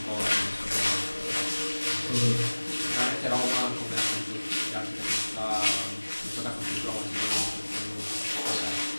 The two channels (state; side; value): inverted; both; correlation -1.00